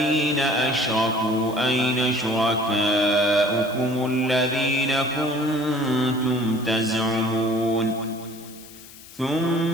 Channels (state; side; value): noise; left; hiss, 19 dB below the sound